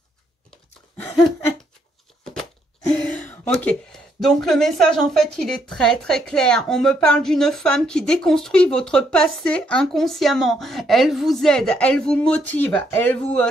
Ok. Donc, le message, en fait, il est très, très clair. On me parle d'une femme qui déconstruit votre passé inconsciemment. Elle vous aide. Elle vous motive. Elle vous...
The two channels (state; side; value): normal; both; correlation 0.73